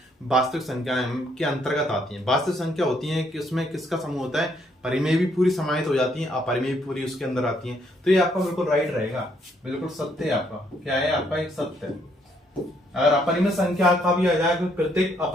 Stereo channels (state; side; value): normal; both; correlation 0.70